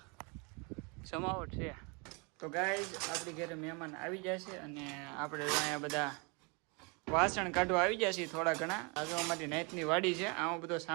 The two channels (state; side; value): quieter; left; 31.3 dB